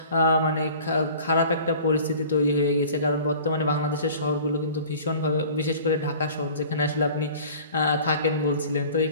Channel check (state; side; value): inverted; both; correlation -0.45